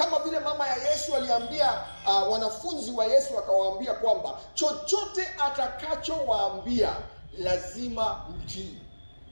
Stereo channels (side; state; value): both; inverted; correlation -1.00